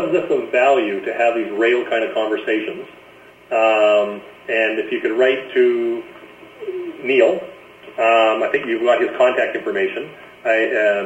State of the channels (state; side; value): identical; both; correlation 1.00